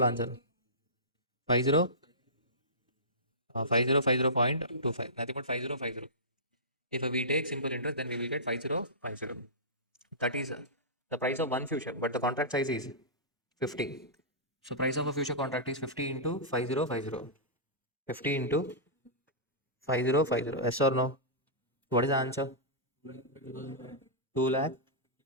answer. 50, 5050.25. Nothing but 5050. If we take simple interest, then we will get 5050. That is the price of one future, but the contract size is 50. So price of a future contract is 50 into 5050. 50 into 5050. Yes or no? What is the answer? 2 lakh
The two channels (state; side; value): normal; both; correlation -0.20